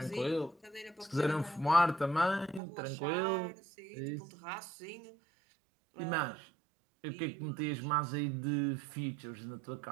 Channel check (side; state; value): left; drops out; at 2.6 s